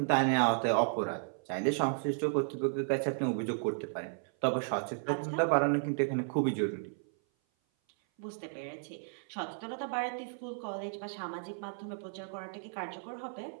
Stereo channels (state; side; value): silent; left; 55 dB below the other